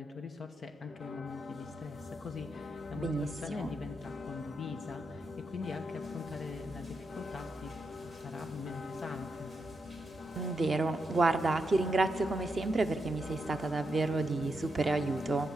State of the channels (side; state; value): both; normal; correlation 0.84